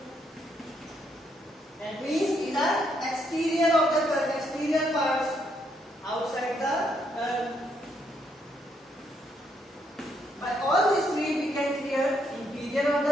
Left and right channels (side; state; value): both; normal; correlation 0.74